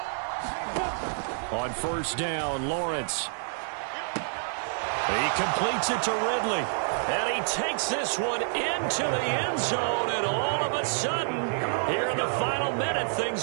On 1st down, Lawrence. He completes it to Ridley. And he takes this one into the end zone. And all of a sudden, here in the final minute,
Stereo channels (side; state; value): left; silent; 59 dB below the other